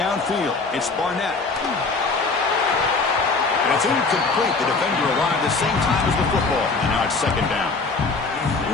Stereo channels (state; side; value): quieter; right; 4.0 dB